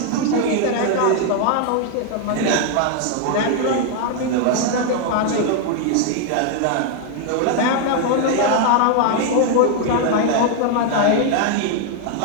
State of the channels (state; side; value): different; both; correlation 0.00